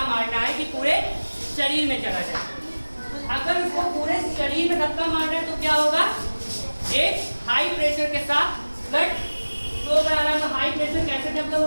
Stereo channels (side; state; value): both; inverted; correlation -1.00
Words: मारना है कि पूरे शरीर में चला जाए। अगर उसको पूरे शरीर में धक्का मारना है तो क्या होगा, एक हाई प्रेशर के साथ ब्लड फ्लो कराना। तो हाई प्रेशर कैसे डेवलप